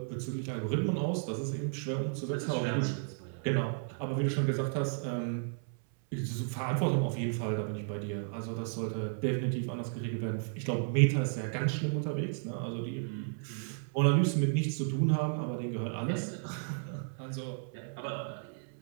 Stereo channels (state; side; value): silent; left; 55 dB below the other